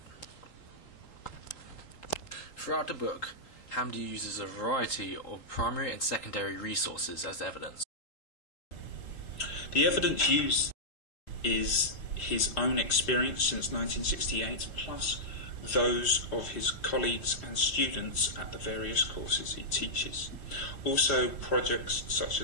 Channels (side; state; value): right; late; 4.0 ms